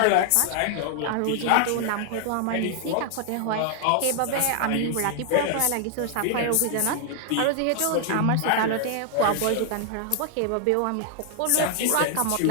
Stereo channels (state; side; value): different; both; correlation 0.00